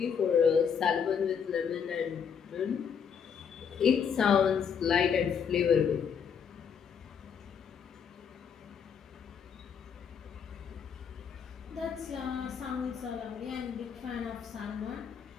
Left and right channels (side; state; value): right; quieter; 7.1 dB